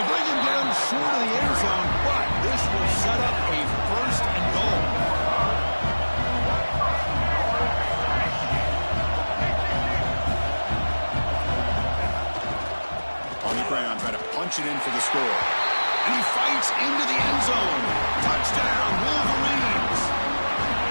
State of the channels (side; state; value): both; inverted; correlation -1.00